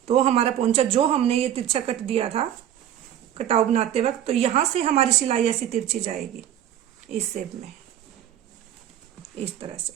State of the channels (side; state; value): left; quieter; 10.9 dB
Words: तो हमारा पोंचा जो हमने ये तिरछा कट दिया था कटाव बनाते वक्त, तो यहाँ से हमारी सिलाई ऐसी तिरछी जाएगी इस शेप में इस तरह से,